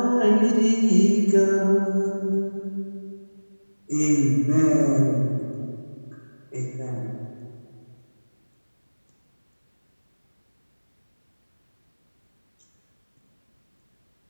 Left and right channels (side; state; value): both; inverted; correlation -1.00